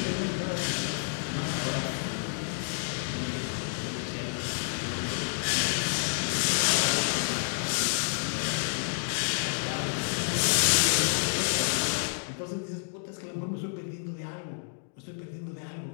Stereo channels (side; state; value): right; silent; digital silence